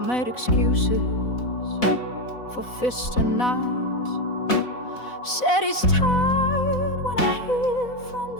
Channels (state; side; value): late; right; 4.0 ms